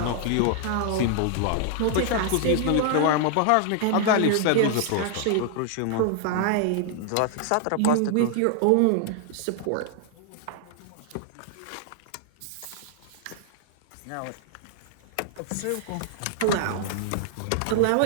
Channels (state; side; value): different; both; correlation 0.00